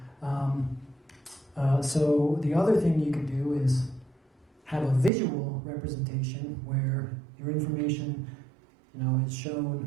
So the other thing you could do is have a visual representation where your information, is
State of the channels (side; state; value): left; drops out; at 5.1 s